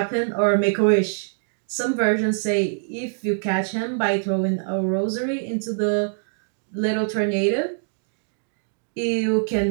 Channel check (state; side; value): silent; left; digital silence